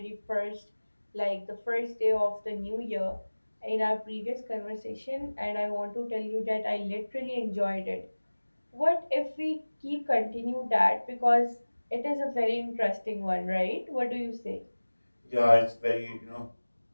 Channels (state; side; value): inverted; both; correlation -1.00